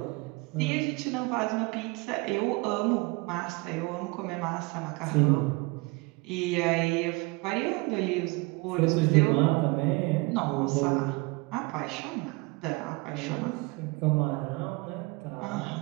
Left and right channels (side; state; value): left; quieter; 26.0 dB